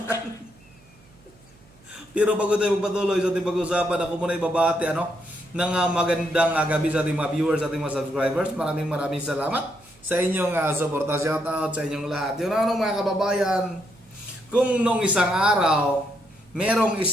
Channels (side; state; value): right; noise; hum, 28 dB below the sound